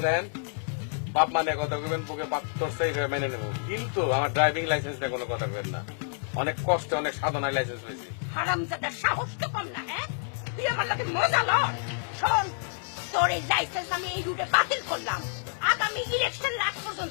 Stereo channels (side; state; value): right; silent; digital silence